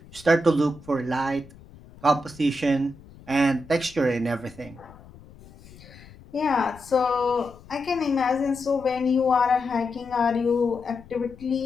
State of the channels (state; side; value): noise; left; rumble, 22 dB below the sound